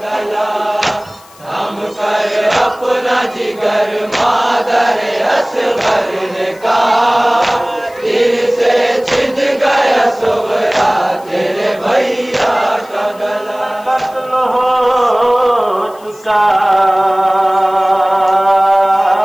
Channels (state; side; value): noise; left; hiss, 26 dB below the sound